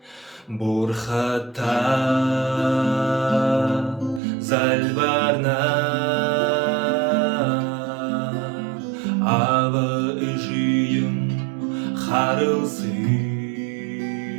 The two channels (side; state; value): left; drops out; at 4.2 s